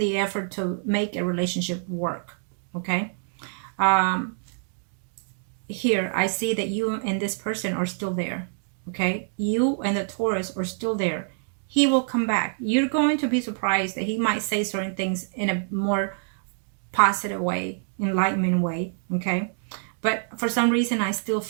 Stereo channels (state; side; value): silent; left; digital silence